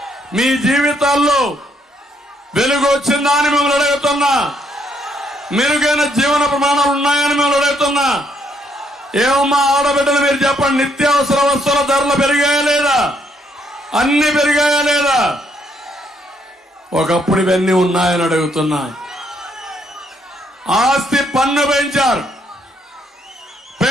మీ జీవితాల్లో వెలుగు వచ్చిందా అని మిమ్మల్ని అడుగుతున్నా. మెరుగైన జీవన ప్రమాణాలు ఉన్నాయని మిమ్మల్ని అడుగుతున్నా. ఏమమ్మా ఆడబిడ్డలు మీరు చెప్పండి, నిత్యావసర వస్తువుల ధరలు పెరిగాయా లేదా? అన్ని పెరిగాయా లేదా? ఒకప్పుడు ఇవన్నీ ఉన్నాయని అడుగుతున్నా. ఆస్తి పన్ను పెంచారు,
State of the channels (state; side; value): normal; both; correlation 0.72